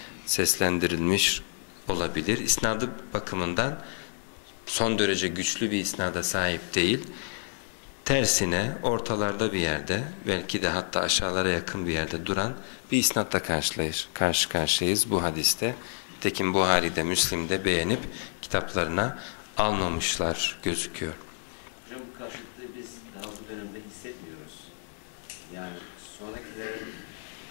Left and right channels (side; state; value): right; silent; 59 dB below the other